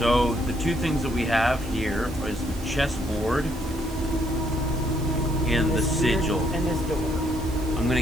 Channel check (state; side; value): noise; right; hiss, 19 dB below the sound